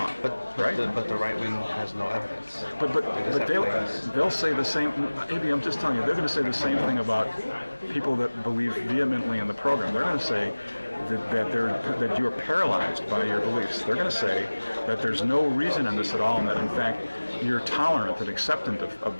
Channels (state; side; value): inverted; both; correlation -1.00